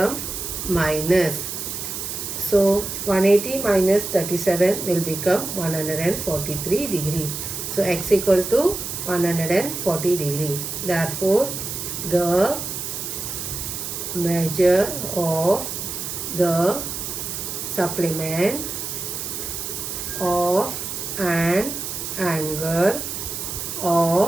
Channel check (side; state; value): right; noise; hiss, 5 dB below the sound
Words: minus. So 180 minus 37 will become 143 degree. So x equal to 140 degree. Therefore the measure of the supplement of an angle